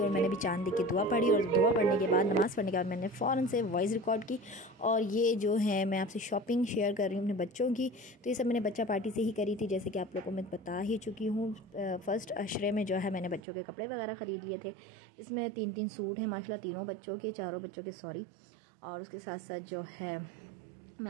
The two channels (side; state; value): left; drops out; at 13.4 s